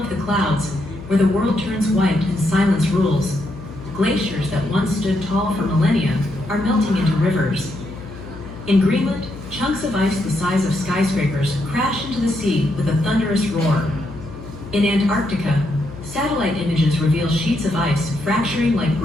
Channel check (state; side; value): noise; left; hum, 14 dB below the sound